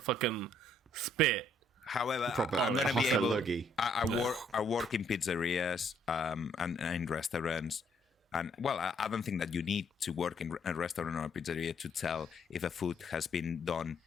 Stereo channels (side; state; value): both; normal; correlation 0.67